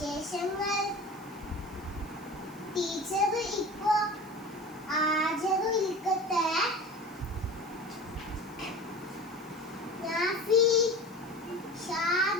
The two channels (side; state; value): right; noise; hiss, 24 dB below the sound